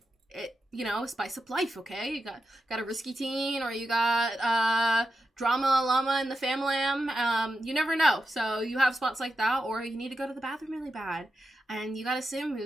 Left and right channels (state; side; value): normal; both; correlation 0.88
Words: spice up life. Okay, you got a risky teen, or you got drama llama in the family. You never know. So you have spots like that, or you need to go to the bathroom really bad, and you got a sim